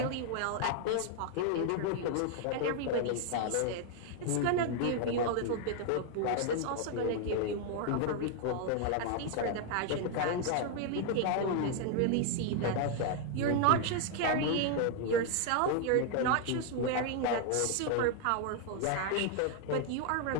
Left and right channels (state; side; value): different; both; correlation 0.00